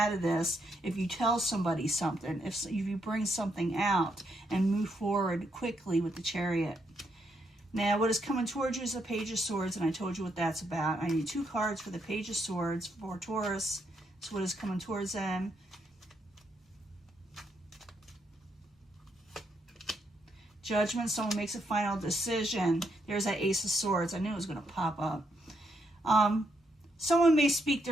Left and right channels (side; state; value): both; normal; correlation 0.77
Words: of this if you tell somebody something, if you bring something out and move forward quickly with the Chariot. Now, what is coming towards you is a Page of Swords, and I told you what that's about. I need 2 cards for the Page of Swords for Taurus. That's what is coming towards them. Judgment, someone makes a final decision. There's that Ace of Swords. I knew it was going to pop up. Someone may speak